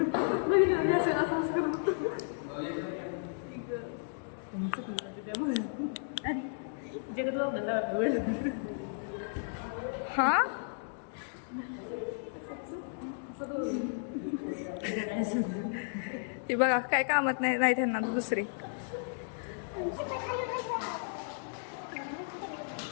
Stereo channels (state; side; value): silent; right; digital silence